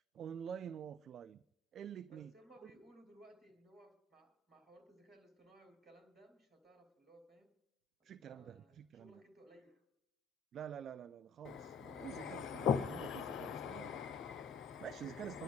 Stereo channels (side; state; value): right; quieter; 3.3 dB